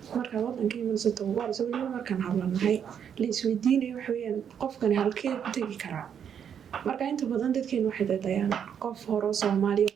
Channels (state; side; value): quieter; left; 8.2 dB